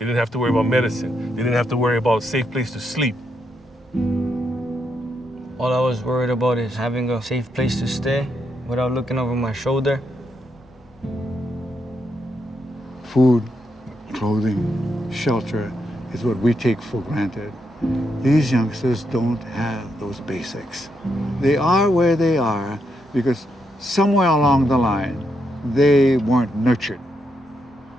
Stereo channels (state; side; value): normal; both; correlation 0.80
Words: didn't have to worry about medicine. They didn't have to worry about a safe place to sleep. All I was worried about is having a safe place to stay without looking over my shoulder. Food, clothing, shelter is what we take for granted. These youngsters don't have those basics. They are where they are because somewhere along the line, they weren't nurtured.